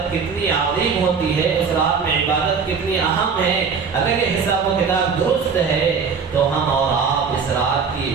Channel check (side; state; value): left; quieter; 5.8 dB